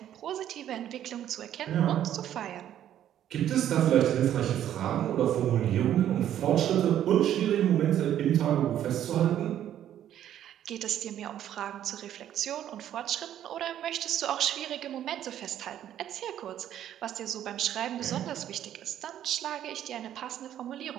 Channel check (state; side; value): quieter; left; 11.1 dB